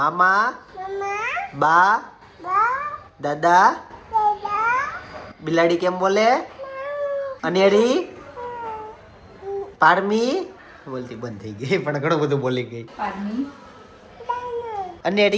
બા, દાદા. બિલાડી કેમ બોલે? અનેરી, પારમી બોલતી બંધ થઈ ગઈ પણ ઘણું બધું બોલી ગઈ. Parmi,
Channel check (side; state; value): both; identical; correlation 1.00